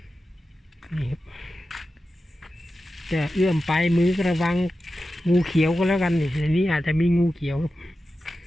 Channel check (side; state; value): both; normal; correlation 0.93